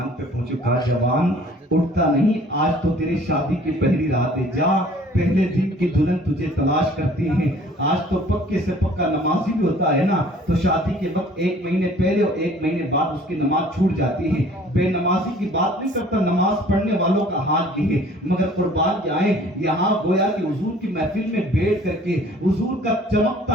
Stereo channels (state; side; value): normal; both; correlation 0.53